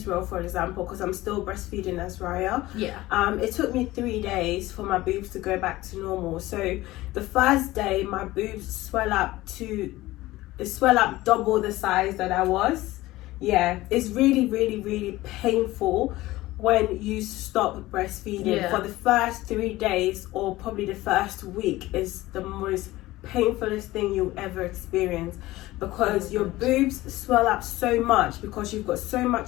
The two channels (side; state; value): right; quieter; 17.8 dB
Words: for example, because I'm still breastfeeding Azrya. It took me 3 days for my boobs to go back to normal. So the first day, my boobs swell up double the size that I was. Yeah, it's really, really, really painful when you stop breastfeeding. For the first 3 days, or probably the first week, is the most painfulest thing you'll ever experience, because your boobs swell up so much because you've got so